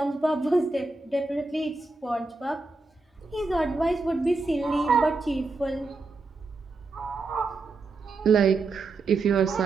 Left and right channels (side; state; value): left; quieter; 3.6 dB